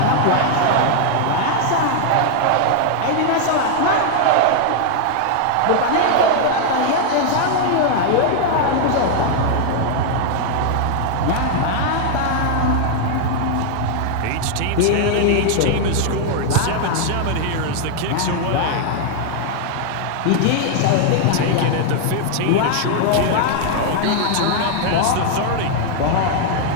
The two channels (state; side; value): different; both; correlation 0.00